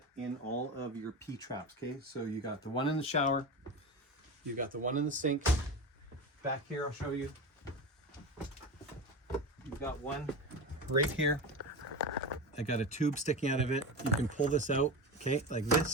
in all of your P-traps, okay? So you got the one in the shower, you got the one in the sink. Back here, I'll show you. You've got one right here. I got a tube sticking out of it. You can pull this out, okay, like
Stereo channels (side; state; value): both; normal; correlation 0.24